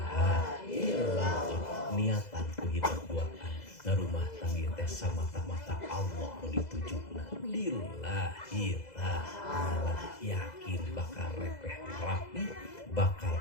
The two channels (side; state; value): right; late; 2.0 ms